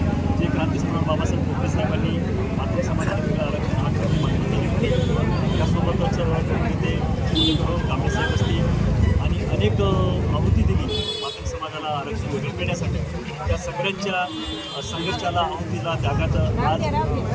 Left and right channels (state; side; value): identical; both; correlation 1.00